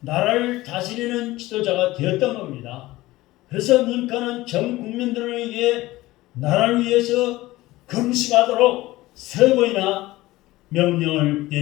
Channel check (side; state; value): right; quieter; 18.2 dB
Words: 나라를 다스리는 지도자가 되었던 겁니다. 그래서 링컨은 전 국민들을 위해 나라를 위해서 금식하도록 3번이나 명령을